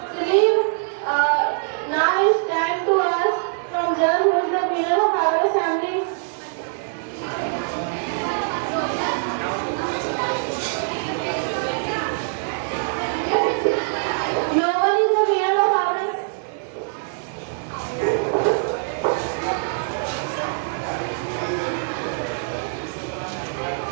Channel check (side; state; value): left; silent; digital silence